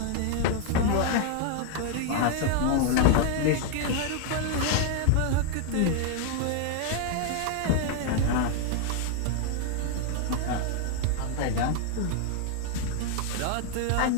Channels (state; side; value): different; both; correlation 0.00